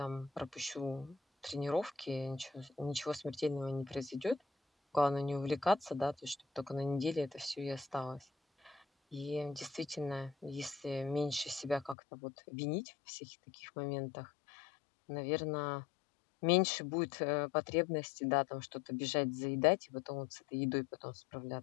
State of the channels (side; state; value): right; drops out; at 12.0 s